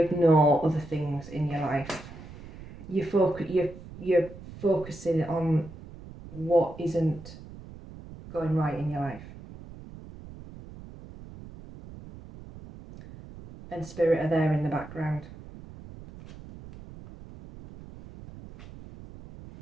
other things in your life. You're focusing on what isn't going right in your life. And spirit are there in the background.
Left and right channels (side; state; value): right; noise; rumble, 16 dB below the sound